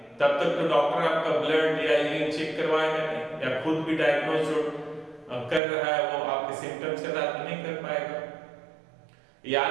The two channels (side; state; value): left; drops out; at 5.6 s